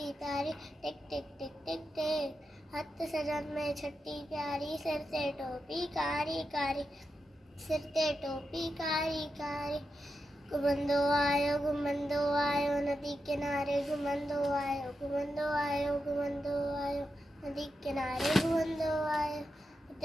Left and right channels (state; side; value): normal; both; correlation 0.88